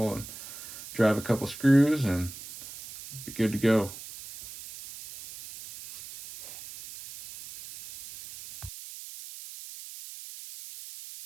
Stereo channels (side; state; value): right; noise; hiss, 14 dB below the sound